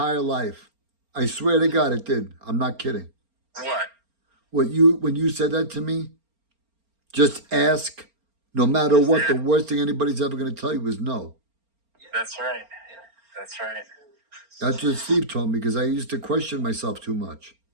life. I swear to God it did. I'm not kidding. What? When you said that to me, just ask, no matter what, the worst thing anybody's ever going to tell you is no. That's right. That's right. That's what Steve told me because I used to question myself too much.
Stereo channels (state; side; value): late; left; 4.3 ms